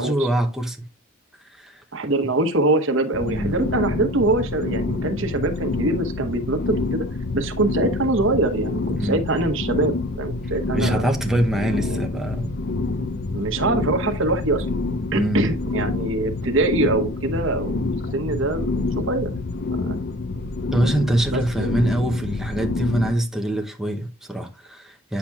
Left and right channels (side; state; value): both; normal; correlation 0.42